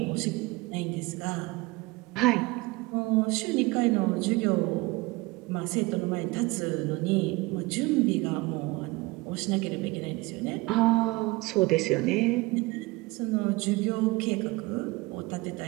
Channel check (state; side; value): quieter; left; 22.5 dB